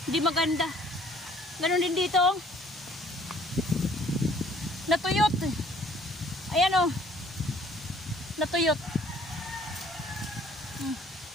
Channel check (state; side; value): normal; both; correlation 0.58